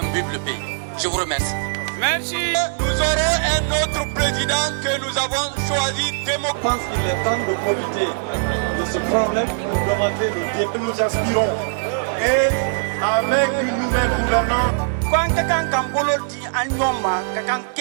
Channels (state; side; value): silent; left; digital silence